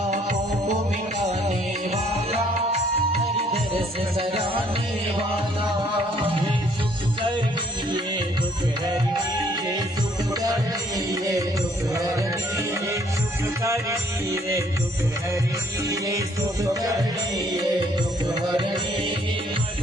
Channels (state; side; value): normal; both; correlation 0.64